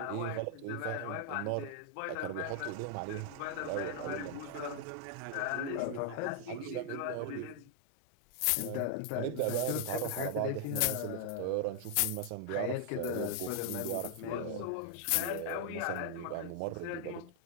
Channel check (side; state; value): both; different; correlation 0.00